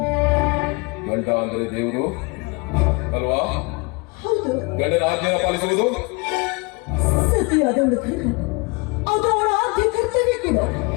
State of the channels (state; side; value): quieter; right; 28.3 dB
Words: ಗಂಡ ಅಂದ್ರೆ ದೇವರು ಅಲ್ವಾ? ಹೌದು. ಗಂಡನ ಆಜ್ಞೆಯನ್ನು ಪಾಲಿಸುವುದು ಸತಿಯಾದವಳ ಧರ್ಮ, ಅದು ಅವಳ ಆದ್ಯ ಕರ್ತವ್ಯ ಕೂಡ.